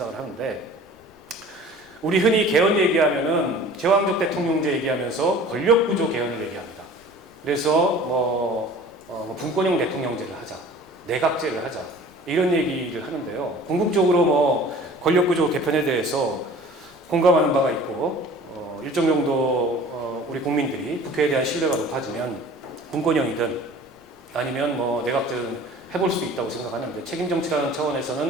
하는데 우리 흔히 개헌 얘기하면은 제왕적 대통령제 얘기하면서 권력구조 개헌을 얘기합니다. 그래서 분권형 대통령제를 하자, 내각제를 하자 이런 얘기를 하는데요. 궁극적으로 뭐 권력구조 개편에 대해서 공감하는 바가 있고 일정 정도 우리 국민들이 국회에 대한 신뢰가 높아지면 분권형이든 아니면 뭐 내각제든 해볼 수도 있다고 생각하는데 책임정치라는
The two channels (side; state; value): left; noise; rumble, 30 dB below the sound